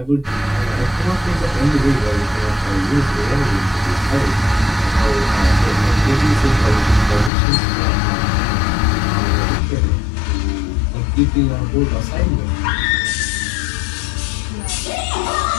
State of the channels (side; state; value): right; drops out; at 7.3 s